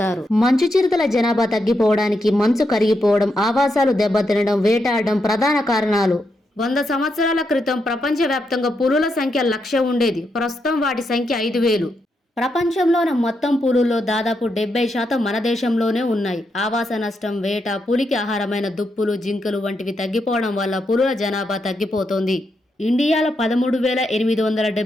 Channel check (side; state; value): both; normal; correlation 0.82